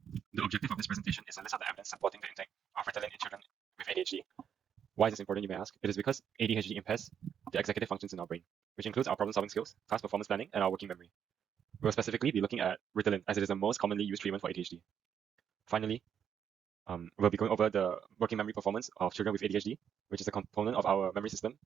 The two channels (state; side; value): quieter; left; 8.3 dB